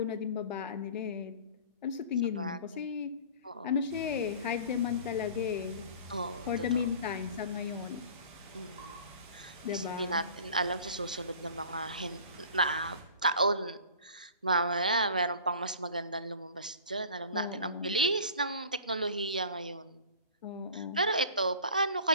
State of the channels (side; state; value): both; inverted; correlation -0.43